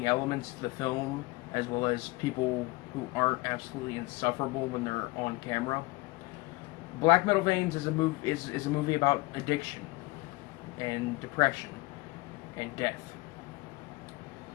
elements to the film, as well as people who aren't absolutely insufferable when they're on camera. Black Metal Veins is a movie about addiction and depression and death.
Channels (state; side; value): quieter; right; 22.4 dB